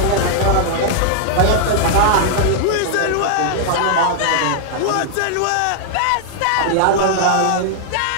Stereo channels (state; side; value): different; both; correlation -0.01